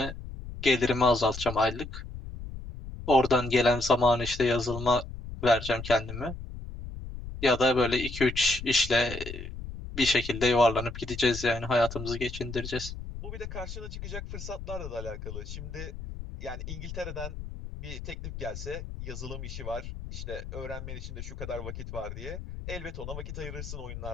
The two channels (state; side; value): noise; left; rumble, 9 dB below the sound